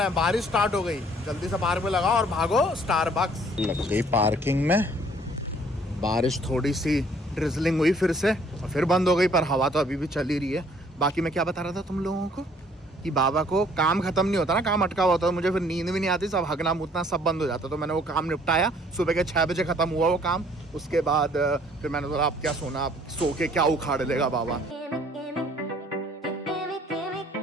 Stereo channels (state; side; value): normal; both; correlation 0.59